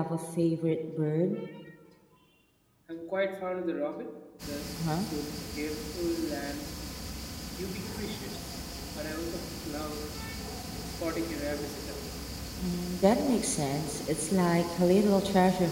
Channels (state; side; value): identical; both; correlation 1.00